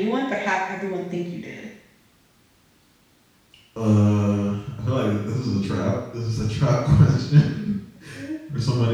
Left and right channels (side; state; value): both; identical; correlation 1.00